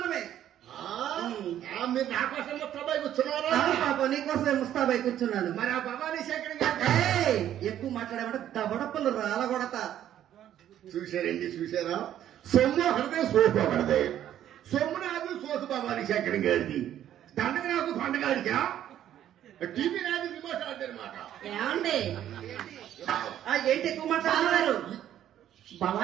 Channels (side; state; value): left; quieter; 11.3 dB